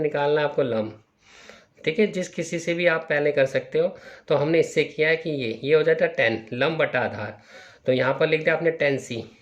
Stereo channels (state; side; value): identical; both; correlation 1.00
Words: निकालना है आपको लंब। ठीक है, जिस किसी से भी आप पहले कर सकते हो। तो हमने इससे किया है कि ये हो जाता है 10 लंब बटा आधार, तो यहाँ पर लिख दिया आपने 10c।